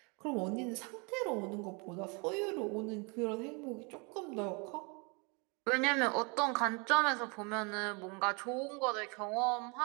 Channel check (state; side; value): quieter; left; 31.7 dB